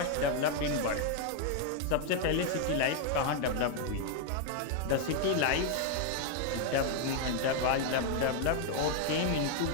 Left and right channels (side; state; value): both; different; correlation 0.00